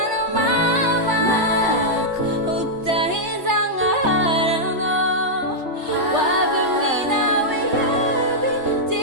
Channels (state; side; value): late; left; 3.3 ms